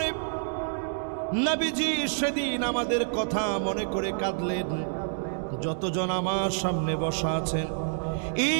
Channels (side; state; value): left; silent; digital silence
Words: নবীজি সেদিন আমাদের কথা মনে করে কাঁদলেন। যতজন আমার সামনে বসা আছেন,